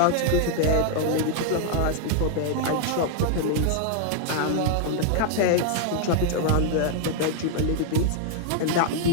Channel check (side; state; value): both; different; correlation 0.00